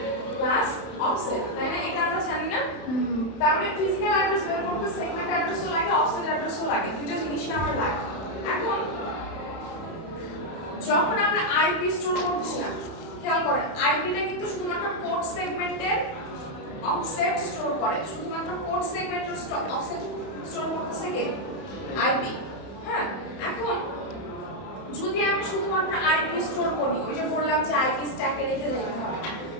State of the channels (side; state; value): right; late; 31 ms